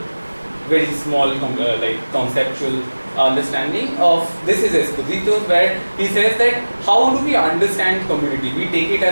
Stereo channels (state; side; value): inverted; both; correlation -1.00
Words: very small conceptual understanding of this is Esposito, where he says that how do we understand community? We take it